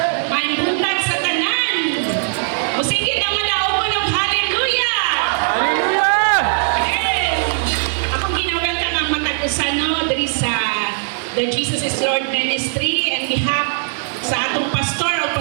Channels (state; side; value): silent; left; digital silence